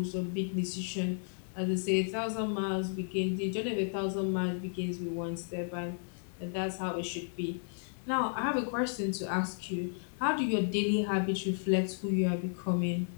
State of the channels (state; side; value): silent; right; digital silence